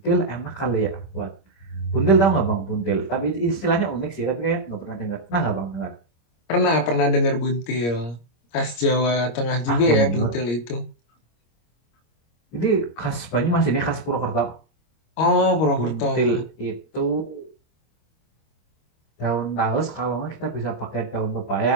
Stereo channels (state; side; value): late; right; 25 ms